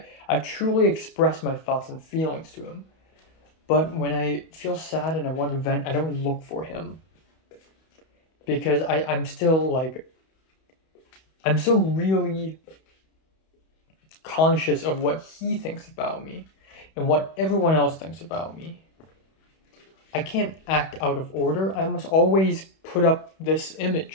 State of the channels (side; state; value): right; late; 31 ms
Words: I truly express my thoughts and feelings to him. But when I feel sad and I want to vent, I don't look for him. Because I'm still like, I'm so really conscious of what he thinks about me and what everyone else thinks about me. I can't act out of order. I must always put up this